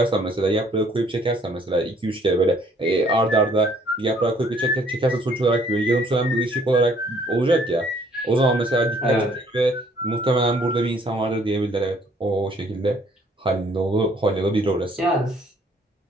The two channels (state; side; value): normal; both; correlation 0.61